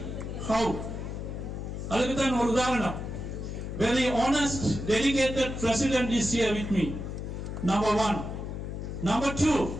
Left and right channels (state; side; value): noise; left; hum, 6 dB below the sound